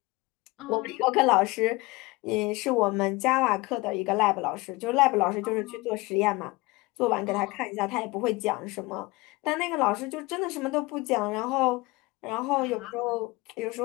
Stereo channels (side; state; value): right; quieter; 22.7 dB